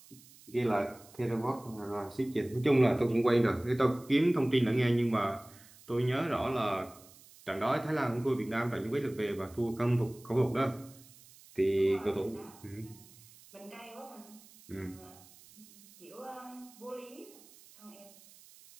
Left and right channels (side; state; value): right; noise; hiss, 23 dB below the sound